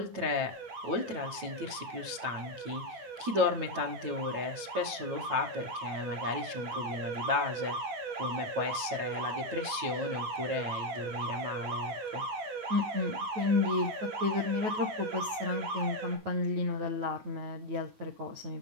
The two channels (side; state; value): left; late; 9.2 ms